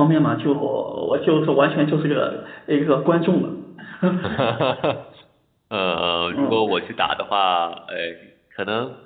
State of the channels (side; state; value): both; identical; correlation 1.00